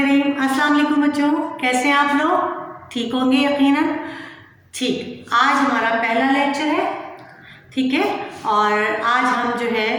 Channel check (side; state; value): both; identical; correlation 1.00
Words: अस्सलाम वालेकुम बच्चों, कैसे हैं आप लोग? ठीक होंगे यकीनन। ठीक, आज हमारा पहला लेक्चर है, ठीक है। और आज हम जो है